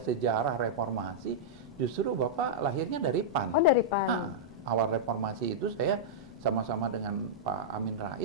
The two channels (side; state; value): both; normal; correlation -0.09